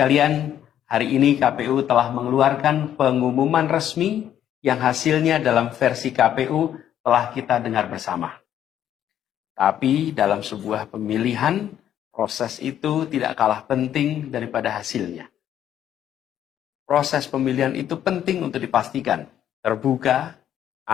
hari ini KPU telah mengeluarkan pengumuman resmi yang hasilnya dalam versi KPU telah kita dengar bersama. Tapi dalam sebuah pemilihan, proses itu tidak kalah penting daripada hasilnya. Proses pemilihan itu penting untuk dipastikan terbuka,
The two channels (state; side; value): quieter; right; 10.6 dB